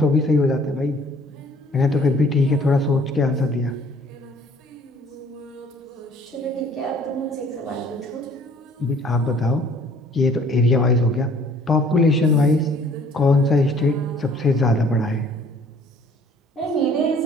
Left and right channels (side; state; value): both; normal; correlation 0.56